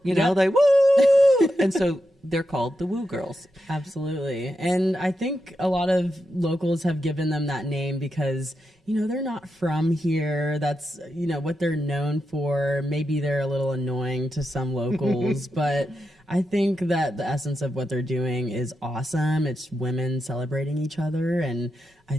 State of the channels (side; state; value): both; normal; correlation 0.86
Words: You know, they woo! And so they're called the Woo Girls. Absolutely. And I think a lot of locals have given them that name because, you know, they're not from here. That's, you know, what they're known for. Maybe they're a little annoying to some locals, but I think that the essence of what they're doing is awesome. It's women celebrating each other. And I